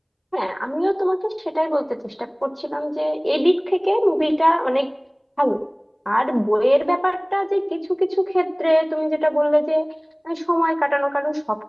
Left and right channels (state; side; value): identical; both; correlation 1.00